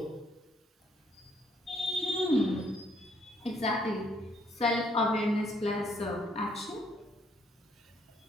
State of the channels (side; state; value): both; normal; correlation 0.69